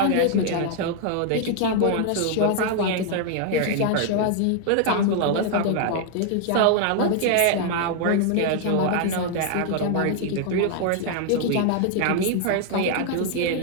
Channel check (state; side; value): different; both; correlation 0.00